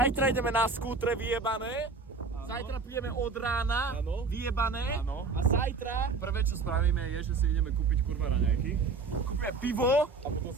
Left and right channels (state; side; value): quieter; left; 4.3 dB